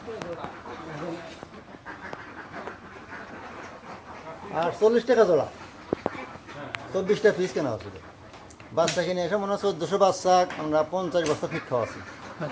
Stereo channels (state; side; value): identical; both; correlation 1.00